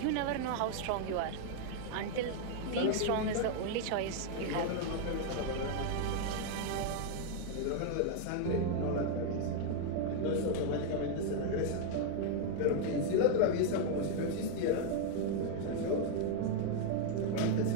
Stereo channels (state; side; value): different; both; correlation 0.00